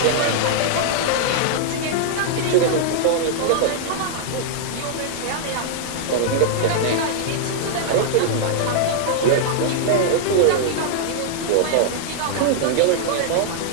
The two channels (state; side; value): different; both; correlation -0.01